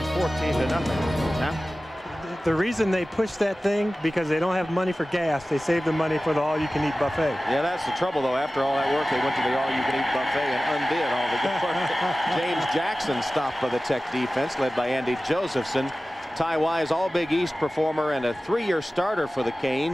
14-0. Now, The reason they push that thing, because they don't have money for gas. They save the money for the all-you-can-eat buffet. Yeah, that's the trouble, though. After all that work, they went to the all-you-can-eat buffet and undid all the good work. James Jackson stopped by the Tech defense, led by Andy Josephson. Ty Wise, all-Big East performer and a 3-year starter for the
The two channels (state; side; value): normal; both; correlation 0.96